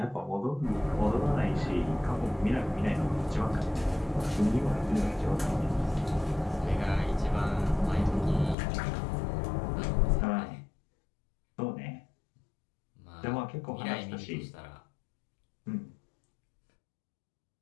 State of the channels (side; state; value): right; drops out; at 8.6 s